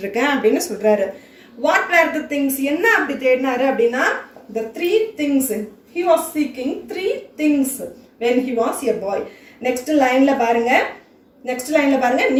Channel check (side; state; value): both; identical; correlation 1.00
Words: இருக்கேன் அப்படின்னு சொல்றாரு. வாட் வேர் த திங்ஸ், என்ன அப்படி தேடினாரு அப்படின்னா, the 3 things he was seeking, 3 things when he was a boy. Next லைன்ல பாருங்க,